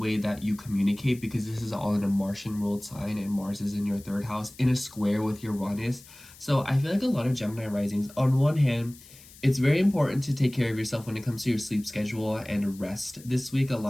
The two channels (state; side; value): noise; left; hiss, 21 dB below the sound